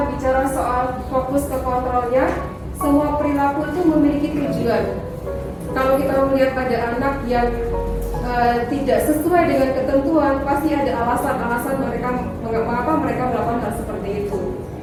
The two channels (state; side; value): identical; both; correlation 1.00